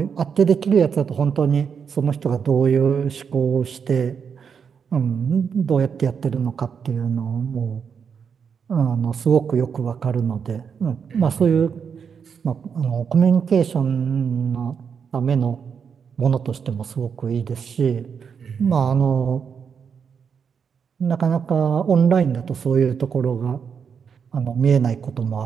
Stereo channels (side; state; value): left; quieter; 6.7 dB